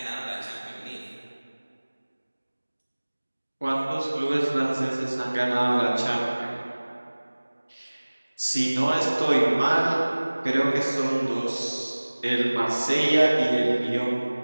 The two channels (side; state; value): both; inverted; correlation -1.00